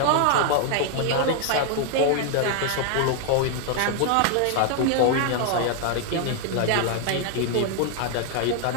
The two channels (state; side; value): different; both; correlation 0.00